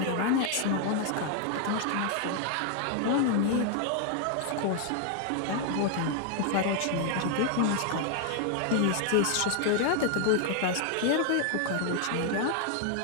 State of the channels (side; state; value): both; different; correlation 0.00